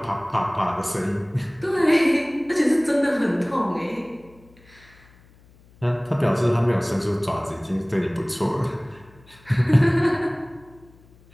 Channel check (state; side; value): noise; left; hum, 27 dB below the sound